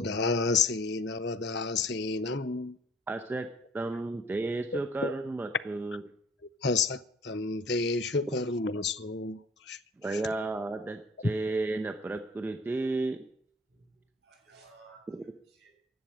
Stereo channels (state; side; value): normal; both; correlation 0.53